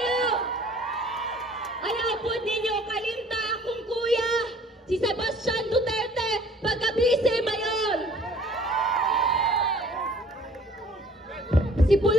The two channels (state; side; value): normal; both; correlation 0.53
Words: Ayaw po ninyo kalimta akong kuya, si Sebastian Duterte, pagka-vice mayor. Si